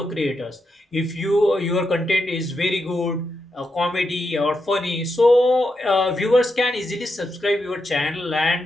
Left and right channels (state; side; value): normal; both; correlation 0.85